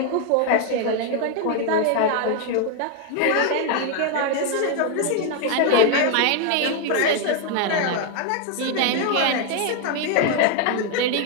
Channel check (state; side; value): different; both; correlation 0.01